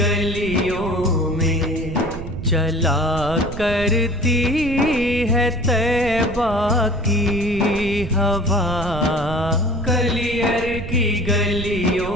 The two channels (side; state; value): right; noise; rumble, 9 dB below the sound